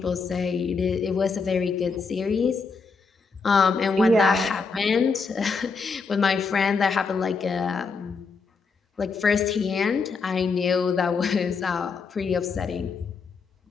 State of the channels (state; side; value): quieter; right; 4.7 dB